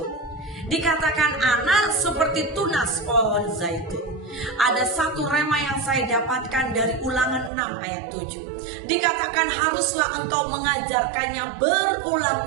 Dikatakan anak seperti tunas pohon zaitun. Ada satu rema yang saya dapatkan dari Ulangan 6 ayat 7. Dikatakan haruslah engkau mengajarkannya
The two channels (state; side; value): drops out; left; at 7.5 s